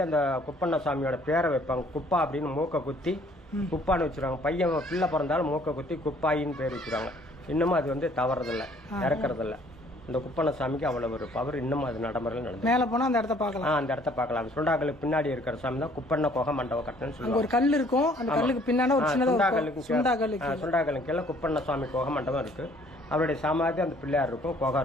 அந்த குப்பண்ண சாமியோட பேரை வைப்பாங்க. குப்பா அப்படின்னு மூக்க குத்தி குப்பான்னு வச்சிருவாங்க. பையன் பிள்ளை பிறந்தாலும் மூக்க குத்தி குப்பாயின்னு பேர் வச்சிருவாங்க. இன்னமும் அது வந்து தவறதில்லை, இறக்குறதில்ல. இந்த குப்பண்ண சாமிக்கு அவ்வளவு ஒரு பவர் இன்னமும் அது நடைமுறையில் நடந்து. மேல போனா அந்த இடத்த பார்க்கலாம். அந்த இடத்த பார்க்கலாம். சுண்டாக்கலுக்கு பின்னாடி இருக்கிற சாமி தான் குப்பண்ண கோக மண்டபம் கட்டணும்னு சொல்லுவாங்க. ஒரு கல் இருக்கும். அந்த கல்லுக்கு பின்னாடி ஒரு சுண்டாக்கலுக்கு கீழே குப்பண்ண சுவாமி கோக மண்டபம் இருக்கு. அவருடைய சமாதி அந்த பிள்ளையார் இருக்கும், கோகா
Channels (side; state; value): both; normal; correlation 0.59